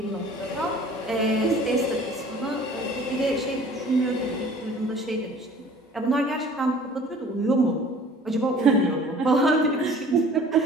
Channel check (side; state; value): both; normal; correlation 0.48